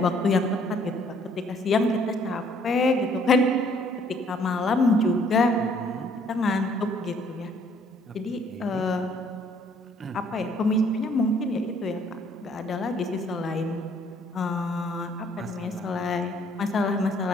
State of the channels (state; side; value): normal; both; correlation 0.62